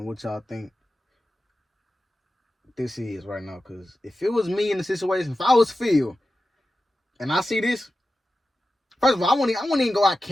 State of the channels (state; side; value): normal; both; correlation 0.93